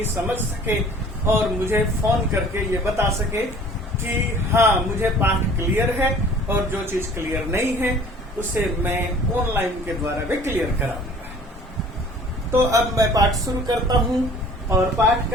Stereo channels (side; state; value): both; normal; correlation 0.50